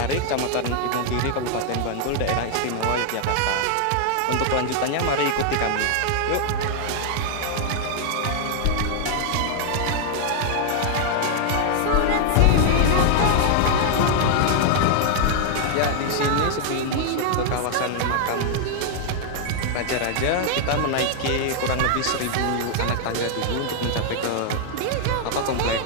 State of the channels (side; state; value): both; different; correlation 0.00